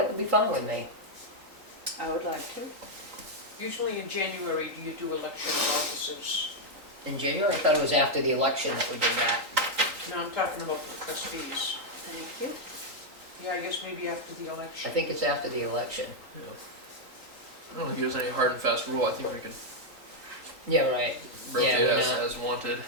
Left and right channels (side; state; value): left; late; 3.9 ms